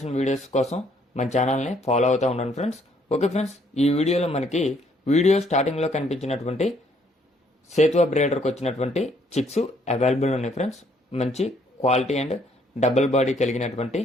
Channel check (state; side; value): normal; both; correlation 0.66